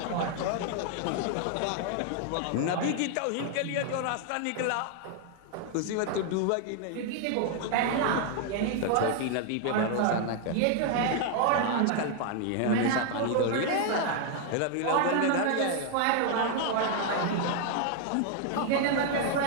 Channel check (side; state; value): both; different; correlation 0.00